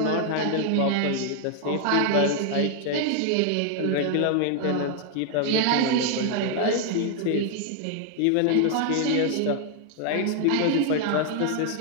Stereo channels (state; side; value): different; both; correlation 0.00